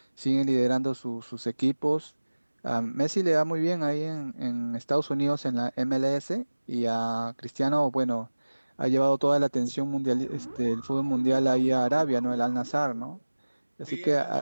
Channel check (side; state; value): both; inverted; correlation -1.00